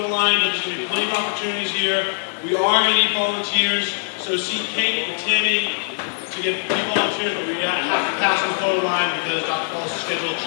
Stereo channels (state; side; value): silent; right; 63 dB below the other